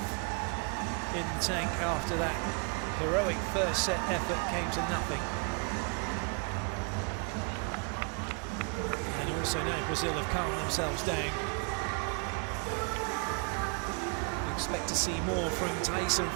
in the tank after that heroic first set effort came to nothing? And also now Brazil have calmed themselves down. We expect to see more from Thaisa and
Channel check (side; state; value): left; quieter; 36.9 dB